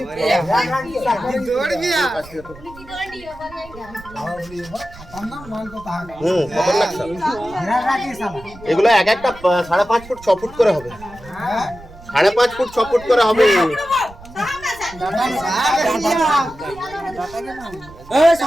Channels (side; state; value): right; noise; rumble, 19 dB below the sound